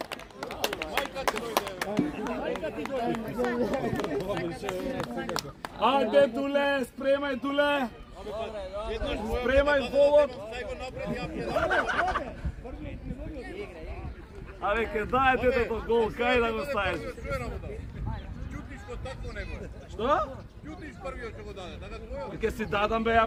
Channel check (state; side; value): identical; both; correlation 1.00